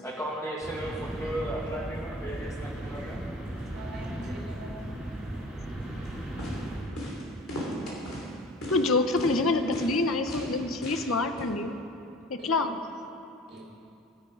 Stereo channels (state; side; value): normal; both; correlation 0.43